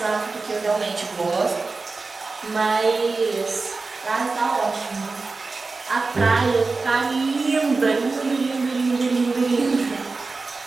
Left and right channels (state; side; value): quieter; left; 3.9 dB